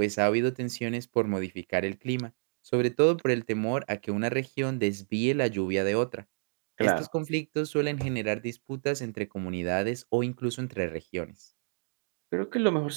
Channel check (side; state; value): left; silent; digital silence